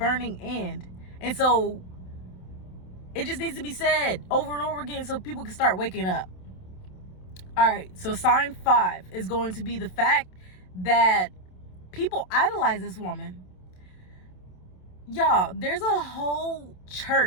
end. And so it just needs to be said over and over again so people can start waking up. All right, so sign 5 is going to be the fact that people idolize this woman. Y'all, there's a whole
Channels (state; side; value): late; right; 27 ms